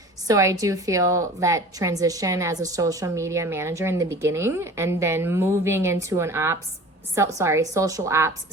So I do feel that transition as a social media manager in the beginning, and then moving into an social ops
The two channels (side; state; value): both; normal; correlation 0.40